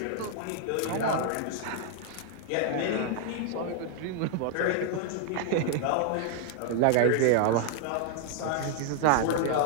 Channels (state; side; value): different; both; correlation 0.00